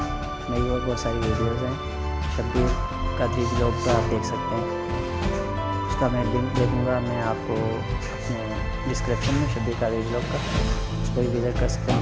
मेरी और बहुत सारी वीडियोज़ हैं। शब्बीर कादरी ब्लॉग पर आप देख सकते हैं, उसका मैं लिंक दे दूँगा मैं आपको अपने डिस्क्रिप्शन में। शब्बीर कादरी ब्लॉग का उसको भी विज़िट कर सकते हैं।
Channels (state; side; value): identical; both; correlation 1.00